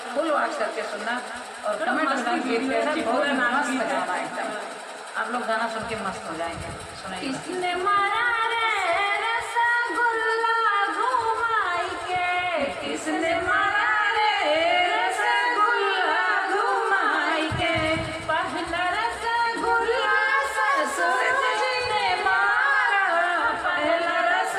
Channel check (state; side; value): identical; both; correlation 1.00